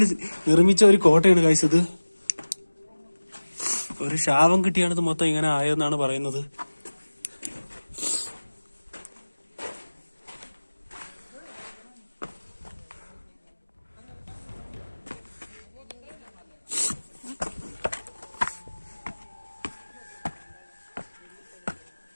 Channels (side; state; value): both; inverted; correlation -1.00